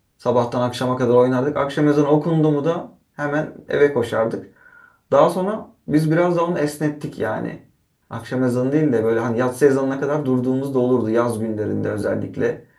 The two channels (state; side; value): identical; both; correlation 1.00